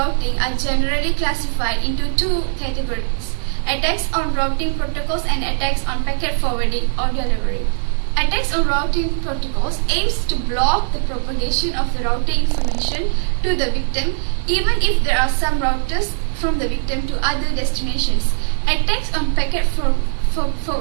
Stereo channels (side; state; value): left; silent; digital silence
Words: are generally classified into two categories: attacks on routing protocols and attacks on packet forwarding or delivery. Attacks on routing protocols aims to block the propagation of the routing information to the victim, even if there are some routers from the victim to other destinations. Attacks on packet